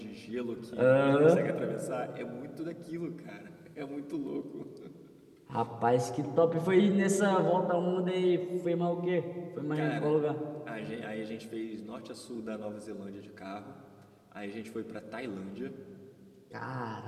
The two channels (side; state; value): both; identical; correlation 1.00